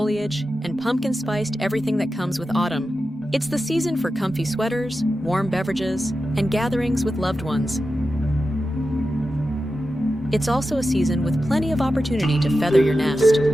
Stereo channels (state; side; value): normal; both; correlation 0.91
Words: and pumpkin-spiced everything that comes with autumn. It's the season for comfy sweaters, warm beverages, and gatherings with loved ones. It's also a season with plenty of opportunity to feather your nest.